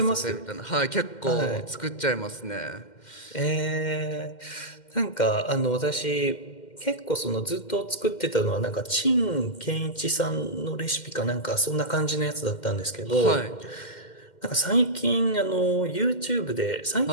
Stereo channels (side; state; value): right; late; 2.1 ms